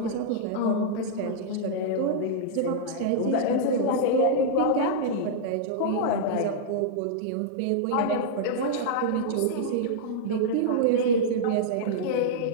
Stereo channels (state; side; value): different; both; correlation -0.02